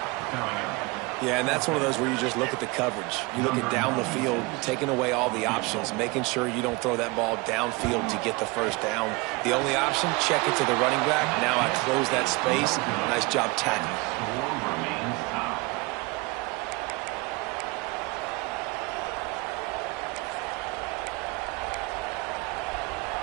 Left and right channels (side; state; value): left; quieter; 25.3 dB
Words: Yeah, and that's one of those where you just look at the coverage. You look at down the field, taking away all the options, making sure you don't throw that ball downfield to get the 1st down. The only option, check it to the running back. Now I close that space. Nice job tackling.